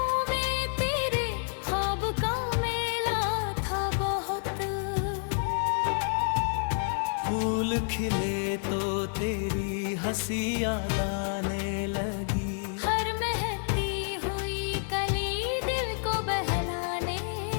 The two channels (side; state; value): right; silent; 57 dB below the other